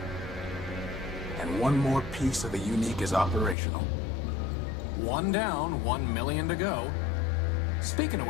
And one more piece of the UNNIIC is operational. One down, 1 million to go. Speaking of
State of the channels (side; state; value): right; drops out; at 3.6 s